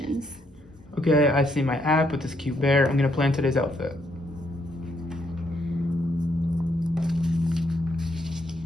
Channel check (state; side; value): normal; both; correlation 0.74